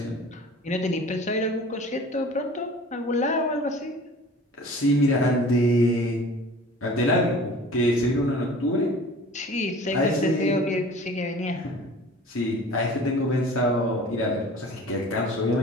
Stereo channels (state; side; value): normal; both; correlation 0.43